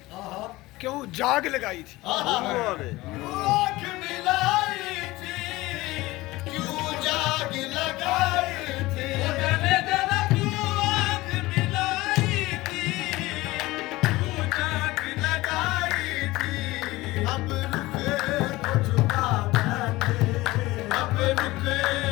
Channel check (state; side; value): quieter; right; 19.5 dB